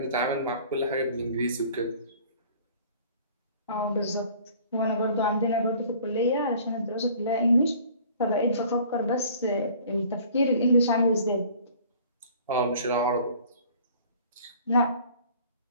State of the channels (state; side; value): inverted; both; correlation -0.50